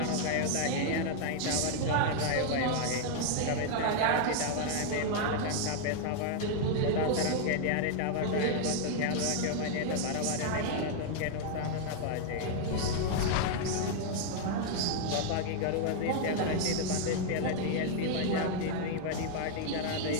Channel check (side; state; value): both; different; correlation 0.00